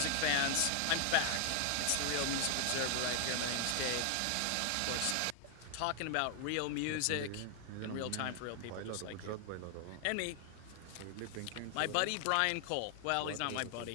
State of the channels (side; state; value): both; different; correlation 0.00